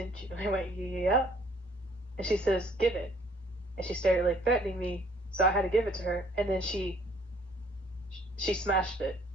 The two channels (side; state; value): both; normal; correlation 0.60